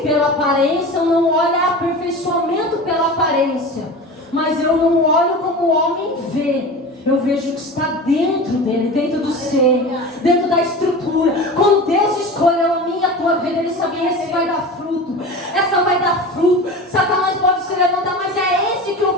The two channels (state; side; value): normal; both; correlation 0.32